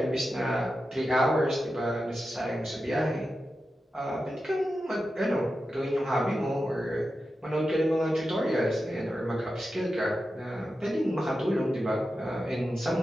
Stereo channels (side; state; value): both; normal; correlation 0.91